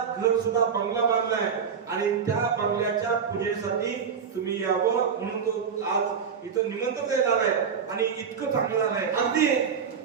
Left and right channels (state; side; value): quieter; left; 6.7 dB